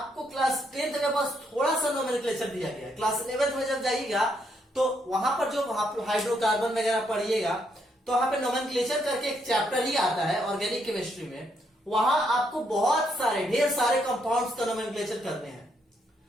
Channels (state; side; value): normal; both; correlation 0.75